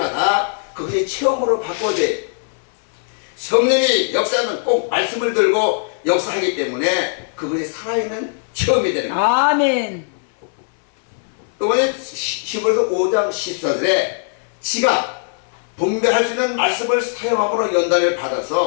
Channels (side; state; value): right; silent; 60 dB below the other